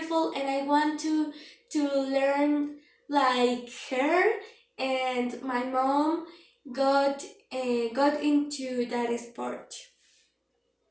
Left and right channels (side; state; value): both; identical; correlation 1.00